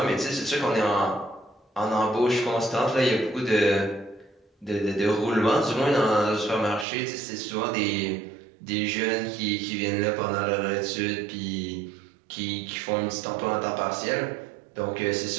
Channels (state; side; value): drops out; left; at 6.9 s